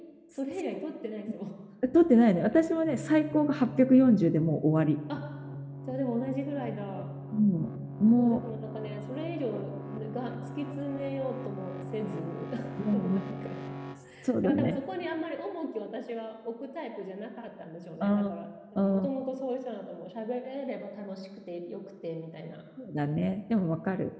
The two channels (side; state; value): both; identical; correlation 1.00